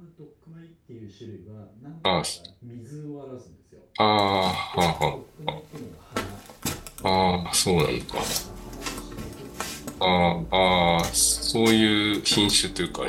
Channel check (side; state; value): both; identical; correlation 1.00